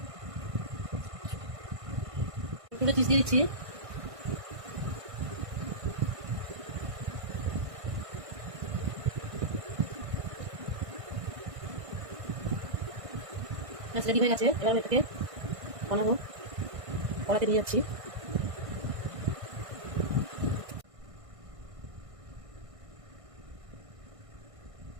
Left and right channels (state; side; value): late; left; 1.5 ms